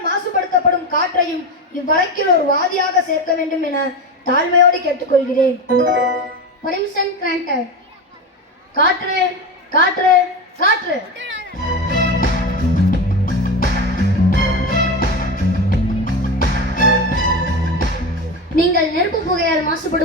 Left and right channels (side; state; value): both; normal; correlation 0.21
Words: மாசுபடுத்தப்படும் காற்றையும் இவ்வழக்கில் ஒரு வாதியாக சேர்க்க வேண்டும் என தாழ்மையோடு கேட்டுக்கொள்கிறேன். Permission granted. காற்று காற்று காற்று. நீங்கள் நெருப்பு புகையால்